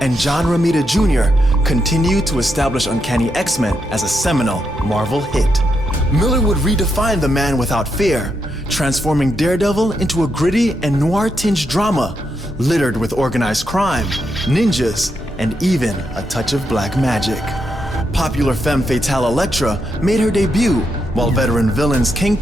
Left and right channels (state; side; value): normal; both; correlation 0.82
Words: John Romita Jr. continued to establish Uncanny X-Men as a seminal Marvel hit. Miller would redefine the man without fear, transforming Daredevil into a gritty and noir-tinged drama littered with organized crime, ninjas, and even a touch of black magic. Popular femme fatale Elektra made her debut, while veteran villains